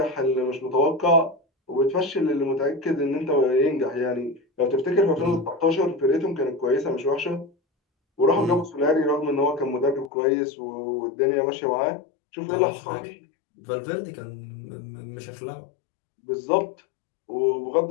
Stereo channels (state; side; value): drops out; right; at 10.1 s